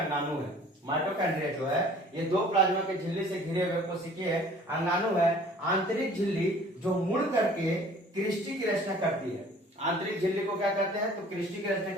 है। माइटोकॉन्ड्रिया जो है ये दो प्लाज्मा के झिल्ली से घिरे हुए कोशिकीय अंगाणु है। आंतरिक झिल्ली जो मुड़ करके क्रिस्टी की रचना करती है। आंतरिक झिल्ली को क्या करते हैं, तो क्रिस्टी की रचना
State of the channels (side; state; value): both; normal; correlation 0.50